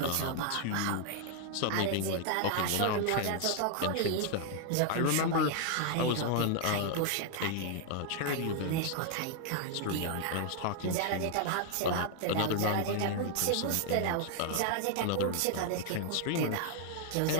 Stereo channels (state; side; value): different; both; correlation 0.00